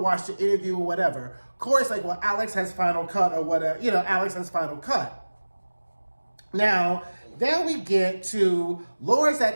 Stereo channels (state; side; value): inverted; both; correlation -1.00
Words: watch the interview or whatever. Corey's like, well, Alex has final cut or whatever. Alex has final cut. Now we get to Laura's